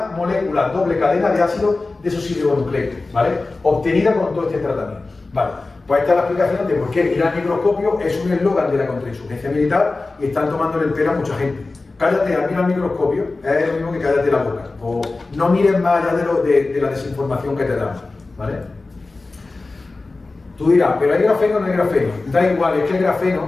molécula doble cadena de ácido desoxirribonucleico, ¿vale? Obtenida con todo este tratamiento, ¿vale? Pues esta es la explicación de por qué ir al microscopio es un eslogan de la contrainsurgencia militar y están tomando el pelo a mucha gente. Cállate, mira al microscopio, es lo mismo que cállate la boca. O no mires más allá de la desinformación que te dan, ¿vale? Tú dirás, pero ¿hay grafeno o no hay grafeno? Da igual, es que el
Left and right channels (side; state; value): right; quieter; 3.5 dB